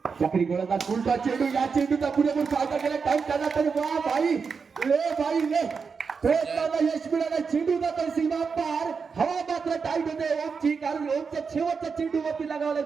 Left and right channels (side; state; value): left; quieter; 5.5 dB